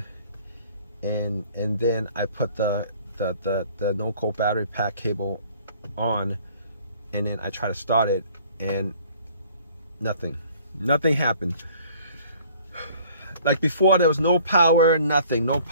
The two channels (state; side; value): inverted; both; correlation -0.55